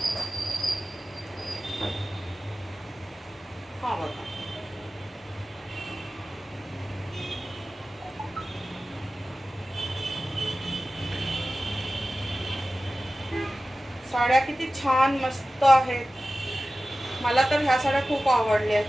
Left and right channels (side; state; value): both; normal; correlation 0.95